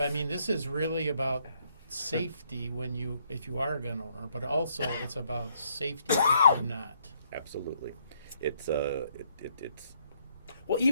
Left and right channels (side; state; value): both; inverted; correlation -0.71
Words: is really about safety if you are a gun owner, but also it's about safety if you're not. Absolutely. It's Well,